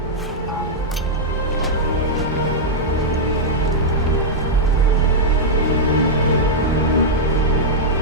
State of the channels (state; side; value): normal; both; correlation -0.06